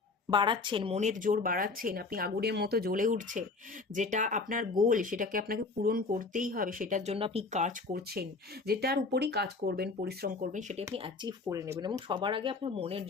বাড়াচ্ছেন, মনের জোর বাড়াচ্ছেন, আপনি আগুনের মতো জ্বলে উঠছেন। যেটা আপনার গোল সেটাকে আপনাকে পূরণ করতেই হবে, সেটার জন্য আপনি কাজ করছেন, যেটার উপরই কাজ করবেন, পরিশ্রম করবেন, সেটা আপনি অ্যাচিভ করে নেবেন এবং সবার আগে আপনার মনের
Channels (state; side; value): quieter; right; 3.9 dB